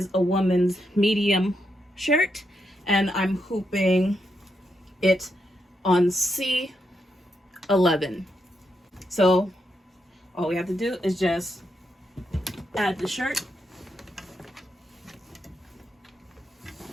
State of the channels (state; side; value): normal; both; correlation 0.82